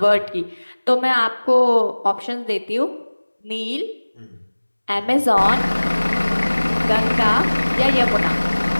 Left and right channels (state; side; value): inverted; both; correlation -1.00